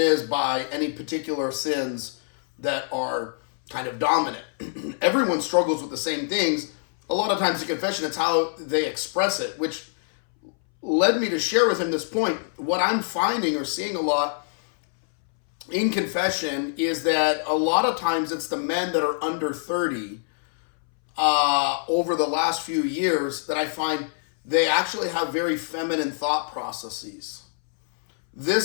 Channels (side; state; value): right; silent; 62 dB below the other